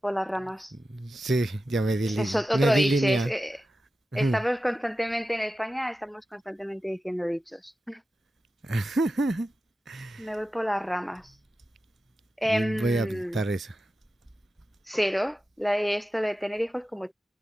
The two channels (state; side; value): normal; both; correlation 0.93